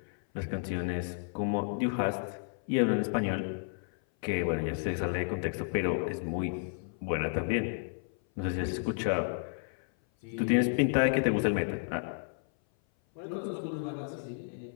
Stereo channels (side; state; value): right; silent; 56 dB below the other